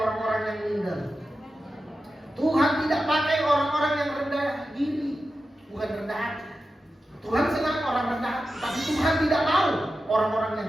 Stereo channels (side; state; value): both; normal; correlation 0.92